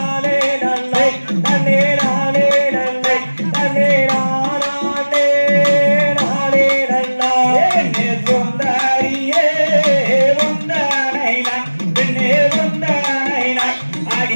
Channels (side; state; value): both; inverted; correlation -1.00